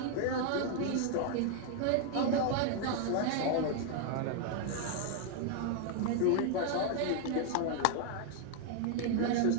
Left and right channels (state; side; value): different; both; correlation 0.00